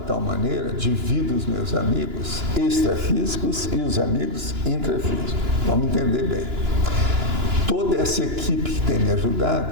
maneira, divido os meus amigos extrafísicos e os amigos intrafísicos. Vamos entender bem. Toda essa equipe que tem me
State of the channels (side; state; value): left; late; 2.9 ms